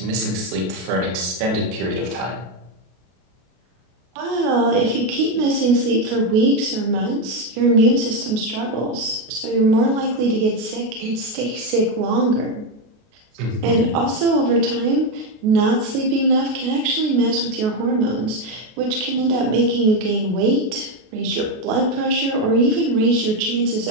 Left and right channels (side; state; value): left; late; 33 ms